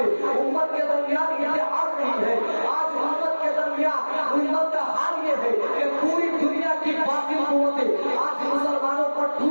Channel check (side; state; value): both; inverted; correlation -1.00